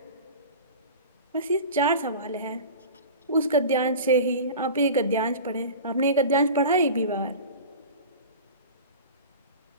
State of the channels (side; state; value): both; inverted; correlation -0.34